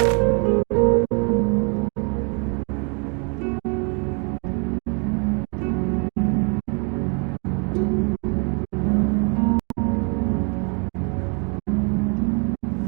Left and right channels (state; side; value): quieter; left; 35.6 dB